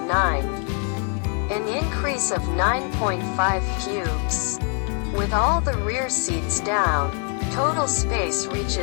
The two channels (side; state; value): right; quieter; 39.1 dB